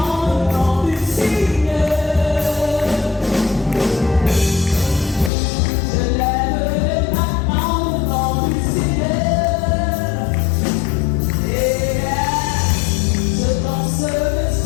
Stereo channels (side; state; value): right; drops out; at 5.3 s